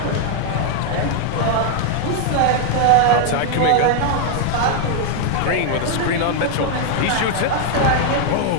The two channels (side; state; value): both; different; correlation 0.00